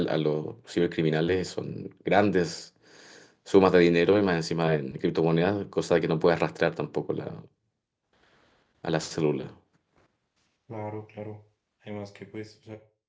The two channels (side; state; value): both; identical; correlation 1.00